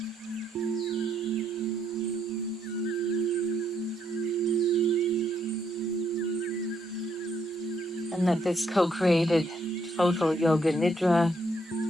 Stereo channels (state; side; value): normal; both; correlation 0.74